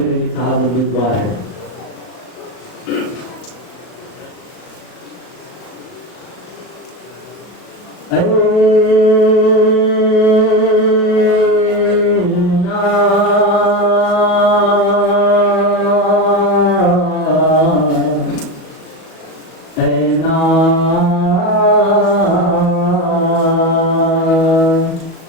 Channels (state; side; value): late; right; 37 ms